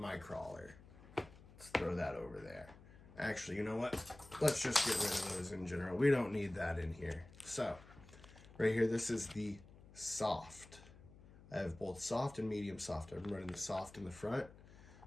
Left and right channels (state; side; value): noise; left; hum, 20 dB below the sound